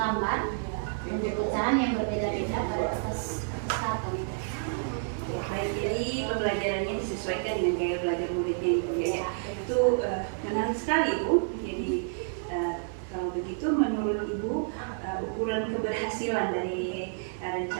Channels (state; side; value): silent; left; digital silence